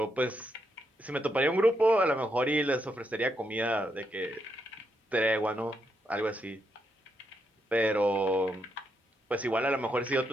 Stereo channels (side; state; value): both; normal; correlation 0.80